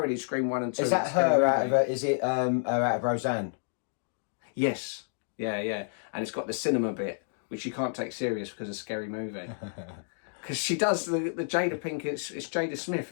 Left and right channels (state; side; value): silent; right; digital silence